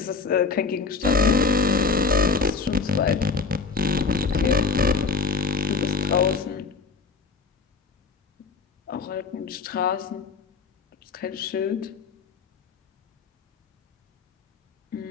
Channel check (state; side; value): quieter; right; 4.7 dB